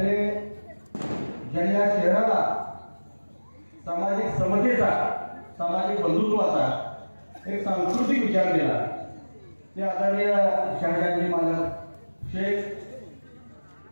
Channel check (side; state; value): both; inverted; correlation -1.00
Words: ज्यांनी या शहराला सामाजिक समतेचा, सामाजिक बंधुत्वाचा एक सांस्कृतिक विचार दिला ते आदरणीय शहाजांनी मालक शेख,